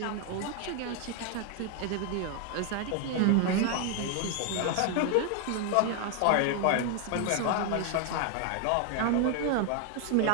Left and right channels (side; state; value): both; different; correlation 0.00